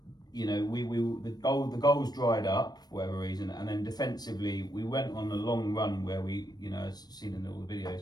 the goals dried up for whatever reason, and then defensively we went on a long run where we, as seen in all the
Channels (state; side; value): late; right; 0.19 ms